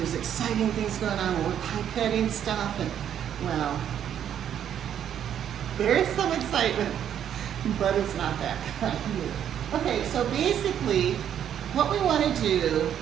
exciting things going on, and we're pipetting stuff, and well, there is some excitement, but it's not that kind. Okay, so basically, what we want to do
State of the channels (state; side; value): quieter; left; 9.6 dB